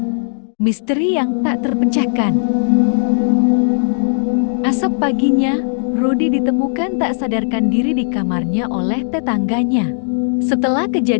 Misteri yang tak terpecahkan. Esok paginya, Rudy ditemukan tak sadarkan diri di kamarnya oleh tetangganya. Setelah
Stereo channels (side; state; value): right; silent; digital silence